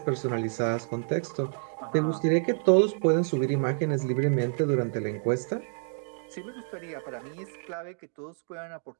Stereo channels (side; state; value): left; silent; 59 dB below the other